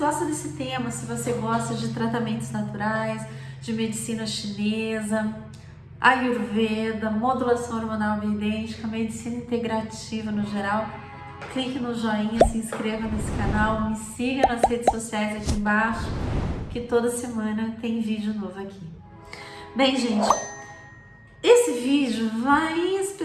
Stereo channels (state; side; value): identical; both; correlation 1.00